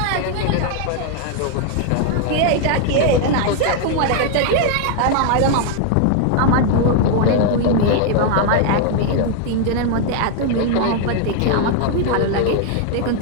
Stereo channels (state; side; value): different; both; correlation 0.00